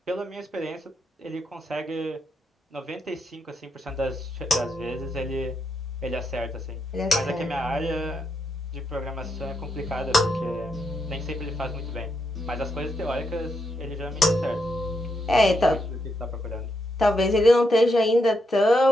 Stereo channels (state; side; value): normal; both; correlation 0.81